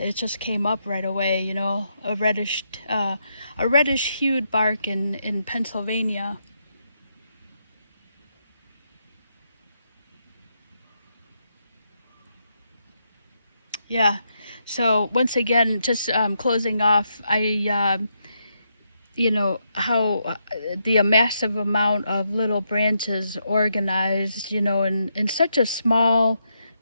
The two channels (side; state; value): both; inverted; correlation -0.80